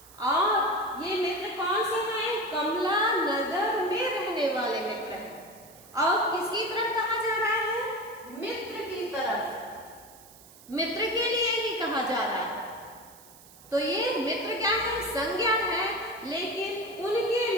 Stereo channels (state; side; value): noise; right; hiss, 22 dB below the sound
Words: और ये मित्र कौन से हैं? कमला नगर में रहने वाले मित्र हैं। और किसकी तरफ कहा जा रहा है? मित्र की तरफ, मित्र के लिए ही कहा जा रहा है। तो ये मित्र क्या है? संज्ञा है, लेकिन उनके